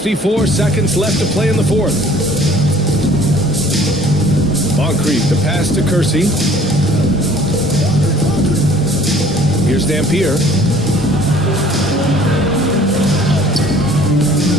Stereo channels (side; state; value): both; normal; correlation 0.53